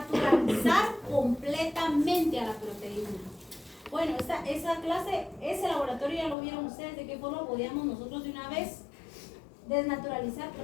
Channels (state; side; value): drops out; right; at 6.4 s